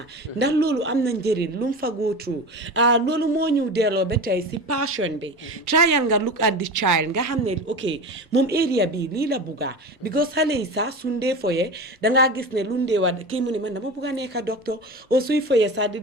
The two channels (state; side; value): normal; both; correlation 0.29